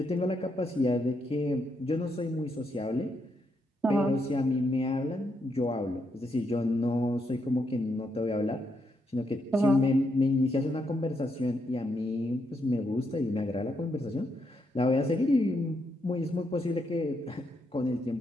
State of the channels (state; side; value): normal; both; correlation 0.80